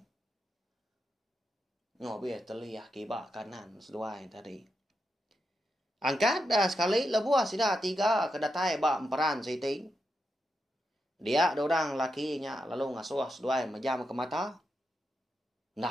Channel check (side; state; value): both; normal; correlation 0.85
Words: Ngobiah teliyah kibak kanan seduai tadi. Angkat dah sekali lebuah sida tiga kedatai bak emperan siti. Dia dorang lakinya lalu ngasuh seduai majam ke mata.